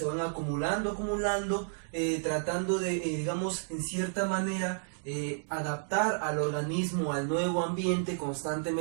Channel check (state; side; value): silent; left; digital silence